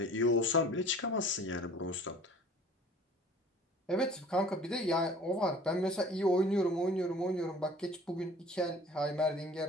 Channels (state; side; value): normal; both; correlation 0.48